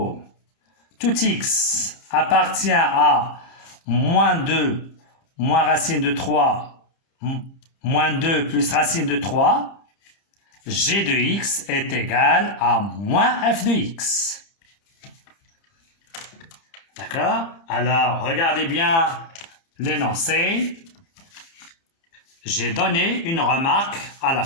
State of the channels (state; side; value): late; right; 30 ms